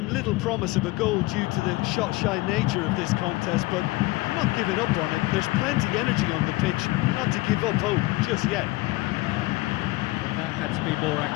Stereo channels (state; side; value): quieter; right; 21.3 dB